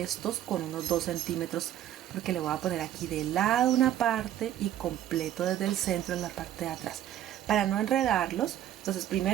estos con unos 2 centímetros, porque le voy a poner aquí de lado una parte y completo desde el centro en la parte de atrás, para no enredarlos. Entonces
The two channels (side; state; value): left; quieter; 11.7 dB